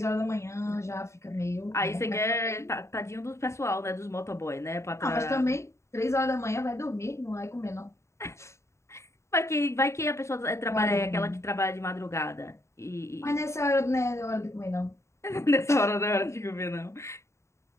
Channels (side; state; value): right; late; 0.14 ms